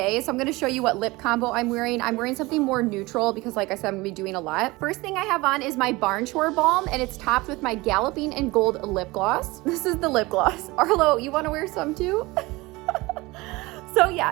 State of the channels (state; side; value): quieter; left; 21.9 dB